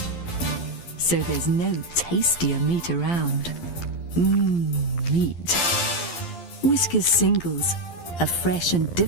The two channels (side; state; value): right; late; 11 ms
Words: So there's no tastier meat around. Meat. Whiskas Singles. A fresh and